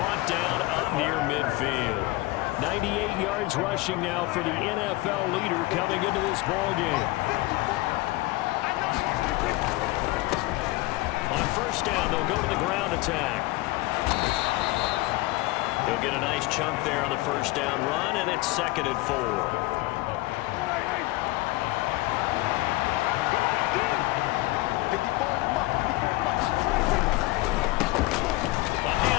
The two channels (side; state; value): right; quieter; 20.1 dB